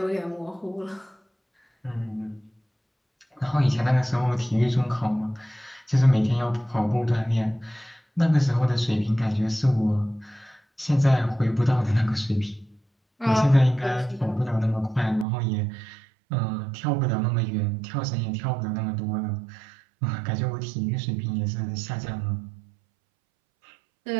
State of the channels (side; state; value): left; drops out; at 15.2 s